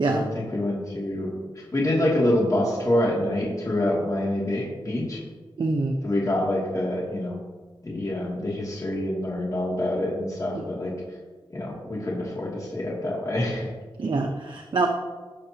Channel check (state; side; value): normal; both; correlation 0.82